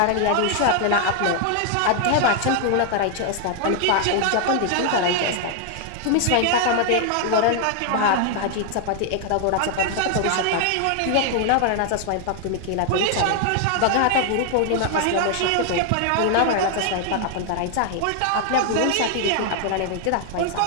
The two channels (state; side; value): different; both; correlation 0.00